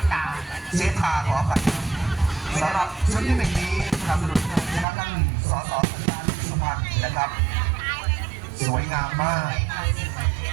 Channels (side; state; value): left; drops out; at 4.9 s